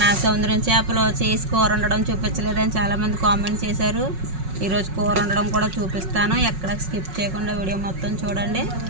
సముద్రం చేపలు చేసి కూర వండడం చూపించలేదని చాలామంది కామెంట్ చేశారు. ఈరోజు కూర వండడం కూడా చూపిస్తాను. ఎక్కడ స్కిప్ చేయకుండా వీడియో మొత్తం చూడండి.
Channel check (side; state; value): left; late; 5.4 ms